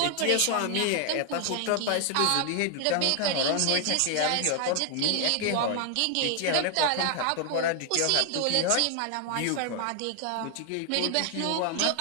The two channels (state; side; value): different; both; correlation 0.00